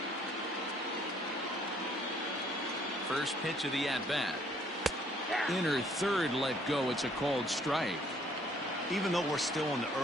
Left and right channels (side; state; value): both; normal; correlation 0.63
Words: First pitch of the at-bat. Inner third let go. It's a called strike. Even though we're still in the